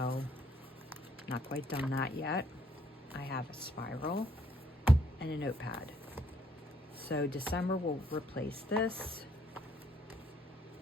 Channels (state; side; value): normal; both; correlation 0.68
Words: not quite done that yet. I have a spiral and a notepad. So December will replace this.